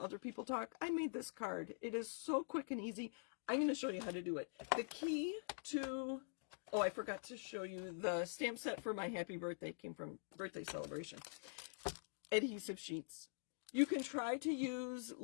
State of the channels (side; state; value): right; silent; digital silence